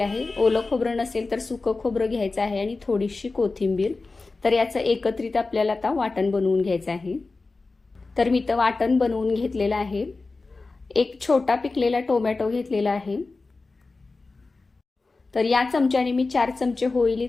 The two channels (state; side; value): quieter; right; 3.7 dB